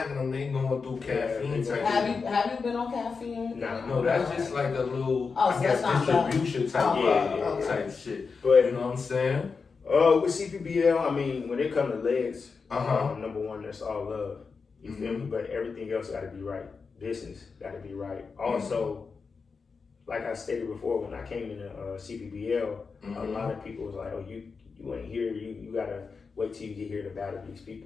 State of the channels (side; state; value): right; quieter; 5.0 dB